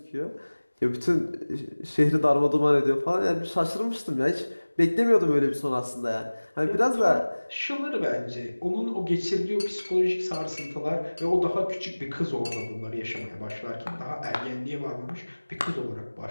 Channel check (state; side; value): inverted; both; correlation -1.00